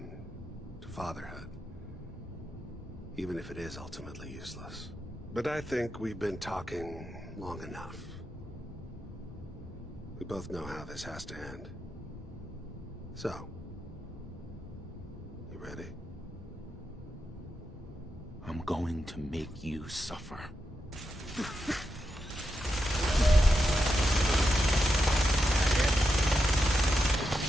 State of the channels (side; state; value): both; normal; correlation 0.86